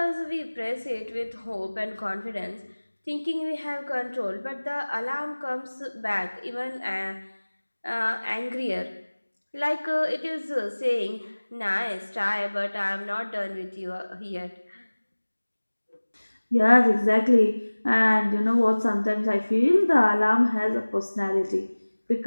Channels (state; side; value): inverted; both; correlation -1.00